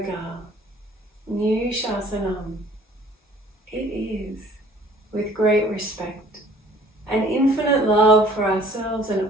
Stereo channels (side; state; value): both; normal; correlation 0.54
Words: new shasanam. It is with great respect and infinite love for ourselves and